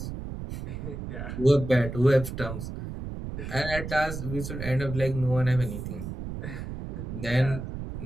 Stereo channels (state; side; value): noise; right; rumble, 7 dB below the sound